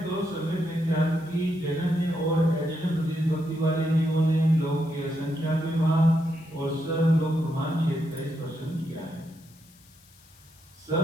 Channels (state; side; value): noise; left; hiss, 27 dB below the sound